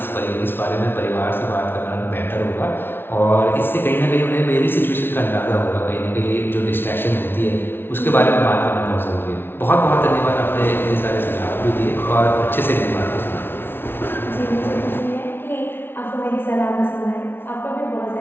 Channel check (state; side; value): late; right; 0.11 ms